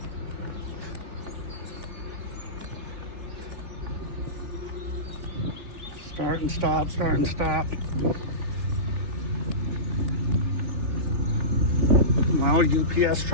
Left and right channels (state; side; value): late; left; 3.4 ms